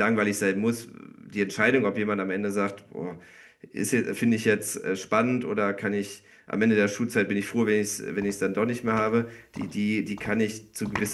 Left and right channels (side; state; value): both; identical; correlation 1.00